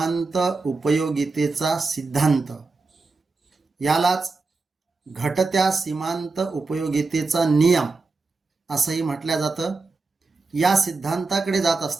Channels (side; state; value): left; quieter; 3.9 dB